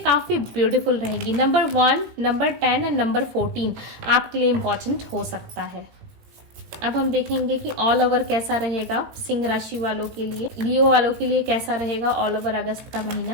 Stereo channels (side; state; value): left; late; 18 ms